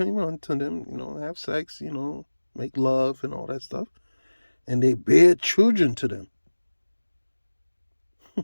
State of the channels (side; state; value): both; inverted; correlation -1.00